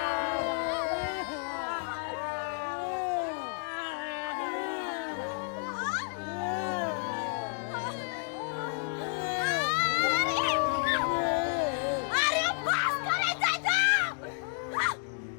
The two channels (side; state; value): right; silent; 57 dB below the other